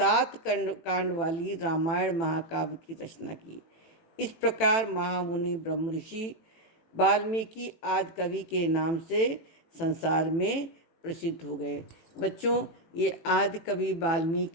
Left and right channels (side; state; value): right; late; 18 ms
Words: कांड वाली रामायण महाकाव्य की रचना की। इस प्रकार महामुनि ब्रह्म ऋषि वाल्मीकि आदि कवि के नाम से संसार में प्रसिद्ध हो गए। बच्चों, ये आदि कवि